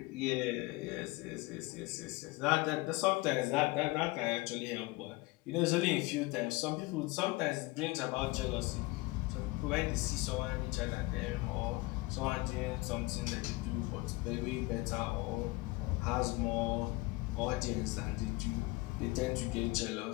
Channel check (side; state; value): right; quieter; 22.3 dB